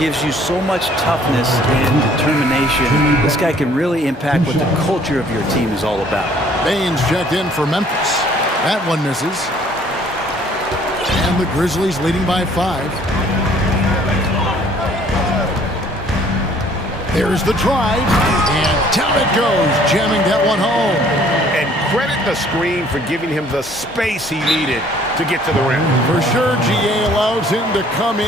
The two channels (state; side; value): normal; both; correlation 0.58